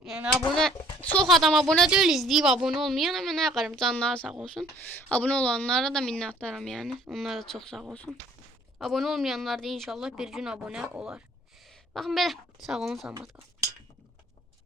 Yəni abunə, çox adam abunə deyil, izləyib abunə olmayan, amma nə qarım, canları sağ olsun. Abunə olanlara da minnətdaram yəni. Onlar da çox sağ olsun. Abunə olmayanlar da inşallah bir gün abunə olar. Baxın belə, sağ olun, salamat qalın.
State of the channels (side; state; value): both; normal; correlation 0.58